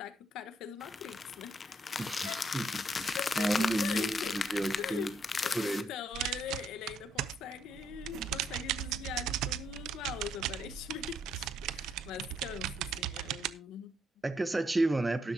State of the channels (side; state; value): both; normal; correlation 0.74